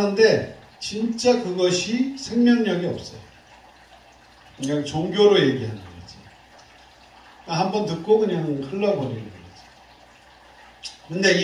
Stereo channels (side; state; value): both; identical; correlation 1.00